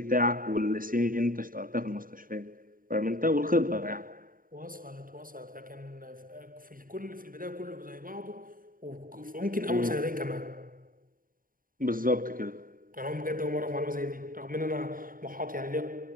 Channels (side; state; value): left; late; 0.41 ms